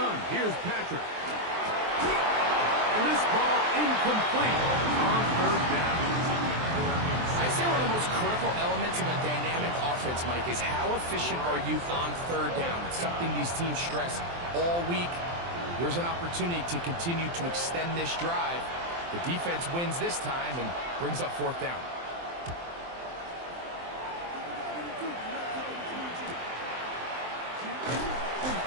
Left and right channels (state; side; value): late; left; 23 ms